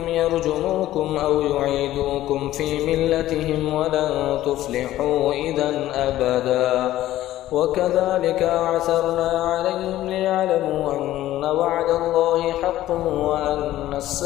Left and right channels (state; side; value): quieter; right; 14.3 dB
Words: يرجموكم أو يعيدوكم في ملتهم ولن تفلحوا إذا أبدا وكذلك أعثرنا عليهم ليعلموا أن وعد الله حق وأن